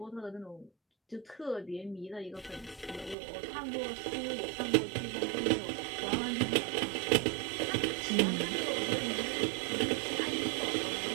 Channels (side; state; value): left; drops out; at 3.2 s